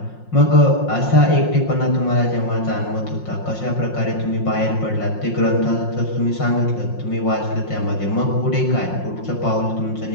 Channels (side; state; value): right; late; 5.6 ms